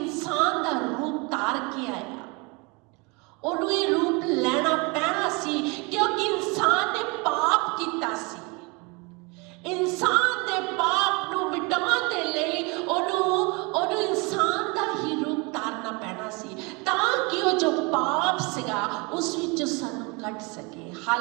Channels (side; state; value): left; quieter; 28.7 dB